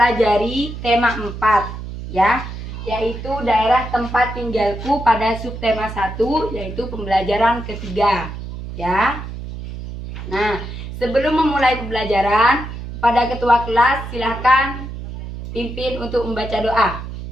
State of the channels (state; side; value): noise; right; hum, 9 dB below the sound